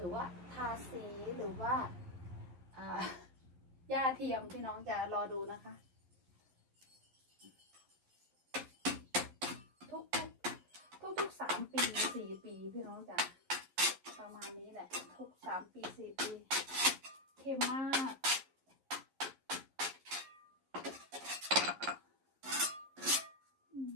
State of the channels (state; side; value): late; left; 11 ms